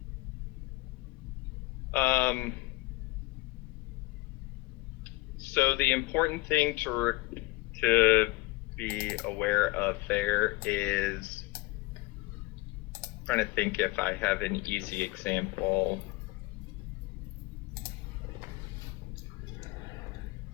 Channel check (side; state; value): right; quieter; 21.5 dB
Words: So the important thing to be aware of there is, I'm trying to think if I have an easy example.